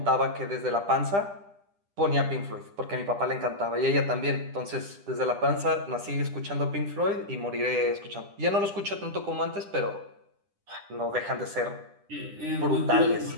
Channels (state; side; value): late; left; 10 ms